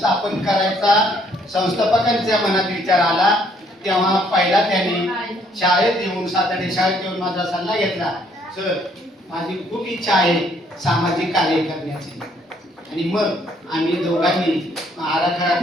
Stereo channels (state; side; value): normal; both; correlation 0.66